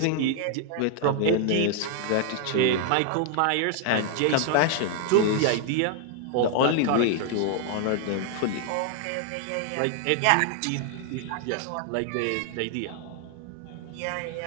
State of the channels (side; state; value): both; different; correlation 0.00